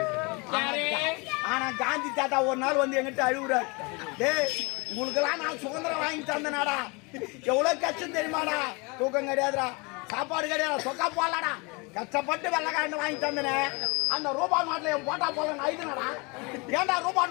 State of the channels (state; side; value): quieter; right; 29.0 dB